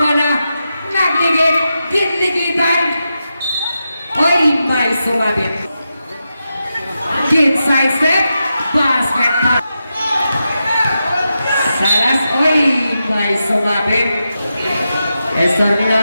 bola. Nagligid. Ginligitan. Oy, may sumabit. Inside step. Basket pass. Salas. Oy, may sumabit.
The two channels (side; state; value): both; inverted; correlation -0.88